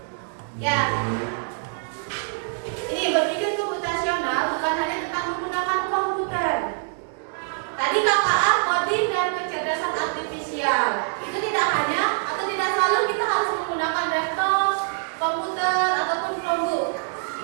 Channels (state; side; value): silent; left; 62 dB below the other